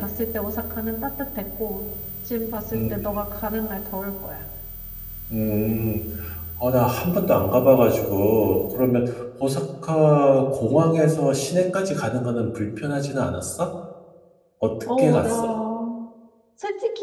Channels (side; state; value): both; identical; correlation 1.00